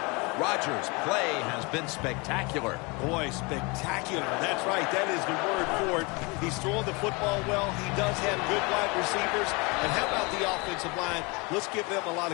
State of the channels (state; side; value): quieter; right; 28.1 dB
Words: Rodgers' play has been spectacular. Boy, spectacular. That's right. That is the word for it. He's throwing the football well. He does have good wide receivers. And how about the offensive line? Let's give them a lot